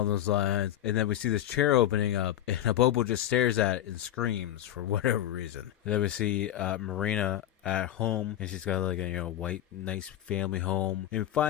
those lines. And then we see this chair opening up, and a Bobo just stares at it and screams for whatever reason. And then we see Marina at home, and she's got like a white nice family home, and we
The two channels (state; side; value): quieter; right; 12.0 dB